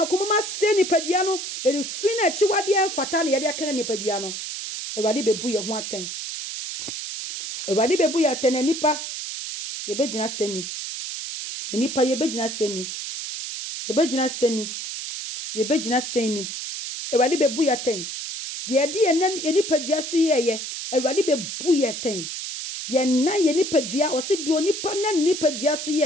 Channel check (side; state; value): right; noise; hiss, 6 dB below the sound